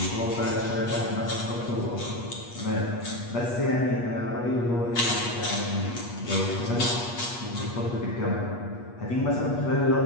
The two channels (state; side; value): late; right; 8.4 ms